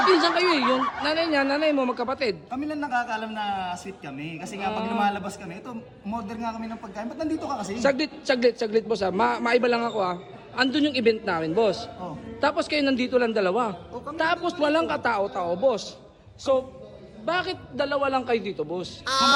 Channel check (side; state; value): both; identical; correlation 1.00